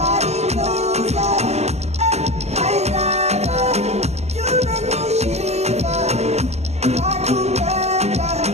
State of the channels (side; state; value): left; late; 0.31 ms